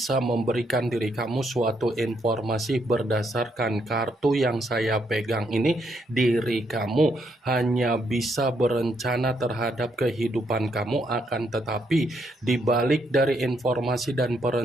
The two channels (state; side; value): normal; both; correlation 0.75